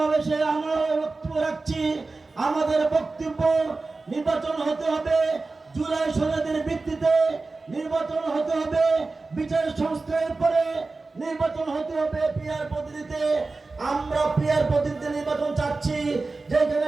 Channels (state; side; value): quieter; left; 3.7 dB